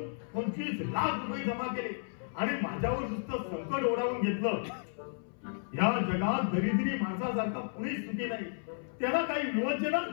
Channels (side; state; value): right; silent; 56 dB below the other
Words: 25 लाख रुपये जमा केले आणि माझ्यावर नुसतं संकट ओढावून घेतलं. या जगात दरिद्री माणसासारखा कुणीच सुखी नाही. त्याला काही विवंचनाच